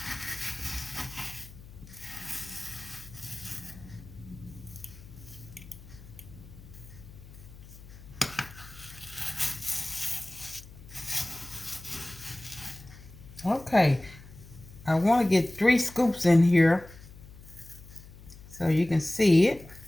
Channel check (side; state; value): left; noise; hum, 18 dB below the sound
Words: Okay. I want to get 3 scoops in here so you can see it.